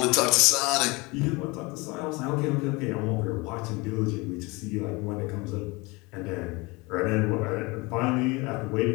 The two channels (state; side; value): quieter; right; 25.4 dB